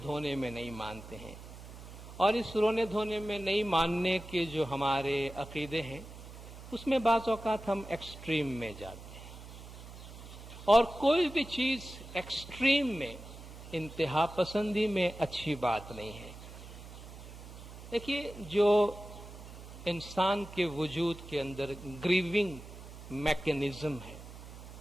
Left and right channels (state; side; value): noise; right; hum, 14 dB below the sound